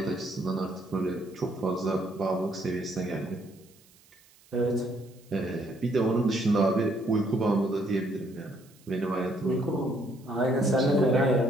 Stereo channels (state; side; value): noise; right; hiss, 28 dB below the sound